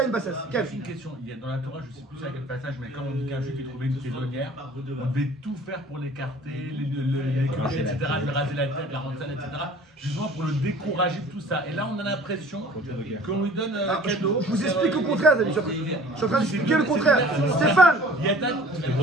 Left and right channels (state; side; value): normal; both; correlation 0.48